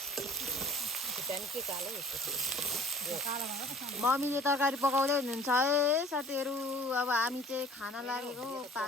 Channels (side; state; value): both; normal; correlation 0.49